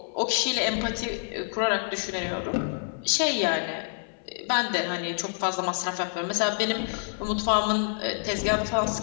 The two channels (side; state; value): right; silent; 60 dB below the other